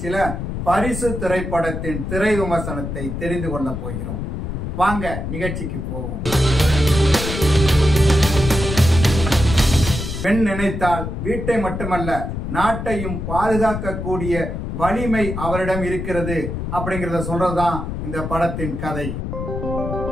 பரிசு திரைப்படத்தின் திரை விமர்சனத்தை தெரிந்து கொள்ள போகிறோம். வாங்க நிகழ்ச்சிக்கு போவோம். பெண் நினைத்தால் வீட்டை மட்டுமல்ல நாட்டையும் பாதுகாக்கக்கூடிய வலிமை அவரிடம் இருக்கிறது அப்படிங்கறத சொல்றதுதான் இந்த படத்தின் கதை.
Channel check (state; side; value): noise; left; rumble, 5 dB below the sound